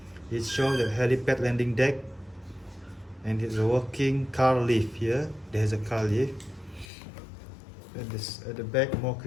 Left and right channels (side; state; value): right; drops out; at 6.9 s